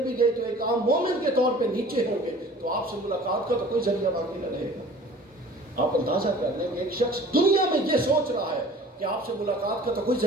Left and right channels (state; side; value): normal; both; correlation 0.46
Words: گئے تو ایک عام مومن کے طور پہ نیچے ہوں گے، تو آپ سے ملاقات کا تو کوئی ذریعہ باقی نہ رہے گا۔ آپ اندازہ کر لیں کہ ایک شخص دنیا میں یہ سوچ رہا ہے کہ آپ سے ملاقات کا تو کوئی